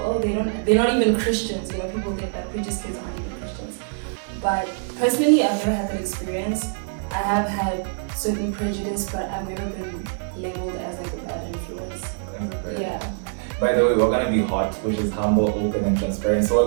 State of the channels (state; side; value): silent; left; digital silence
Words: Oh, they're not even Christians. You know, people think that preacher's kids aren't even Christians. But personally, I've never had that experience. I have had certain prejudice, but I've never been labeled as like a bad influence. Yeah. By the way, we're gonna be hot, which is humble, open, and transparent. So